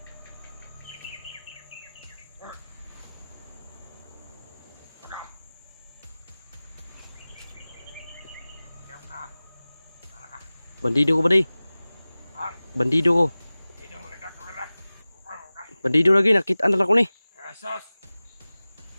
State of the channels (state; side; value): inverted; both; correlation -0.98